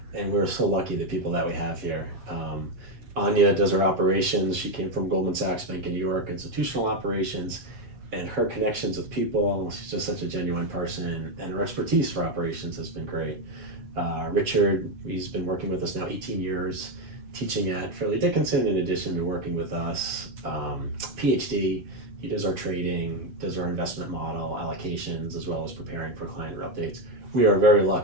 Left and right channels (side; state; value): left; late; 7.6 ms